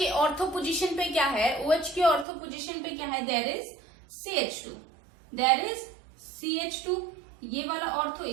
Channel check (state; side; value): drops out; left; at 2.2 s